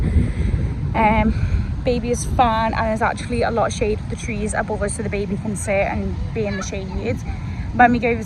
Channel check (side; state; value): both; identical; correlation 1.00